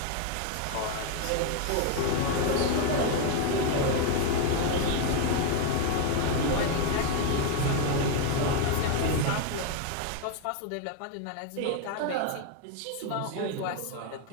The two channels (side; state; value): both; different; correlation 0.01